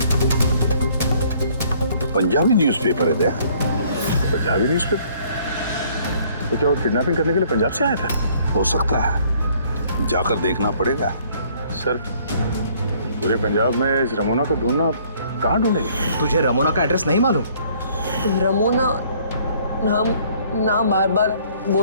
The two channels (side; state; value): both; inverted; correlation -0.60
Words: पंजाबी न्यूज़पेपर है। पंजाबी न्यूज़पेपर? तो क्या वो किडनैपिंग करने के लिए पंजाब से आया था? हो सकता है, जाकर देखना पड़ेगा। सर पूरे पंजाब में इस रमोना को ढूंढना, कहाँ ढूंढेंगे? तुझे रमोना का एड्रेस नहीं मालूम? रमोना नाम बार बार